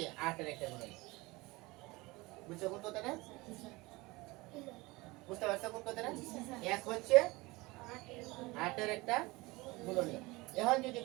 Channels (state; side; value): quieter; left; 22.5 dB